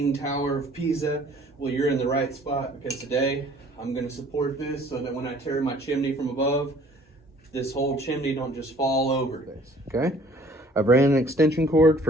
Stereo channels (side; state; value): both; normal; correlation 0.55